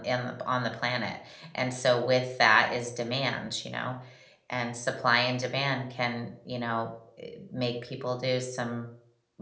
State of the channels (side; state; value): both; identical; correlation 1.00